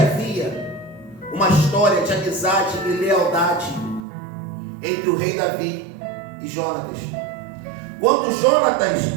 uma história de amizade e lealdade entre o rei Davi e Jonatas. Quando Jonatas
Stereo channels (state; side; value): drops out; left; at 4.0 s